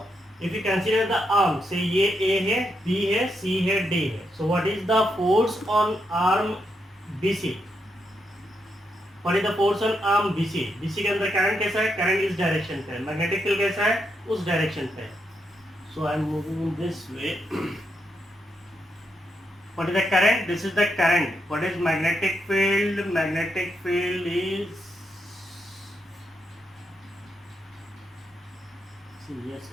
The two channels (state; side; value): normal; both; correlation 0.81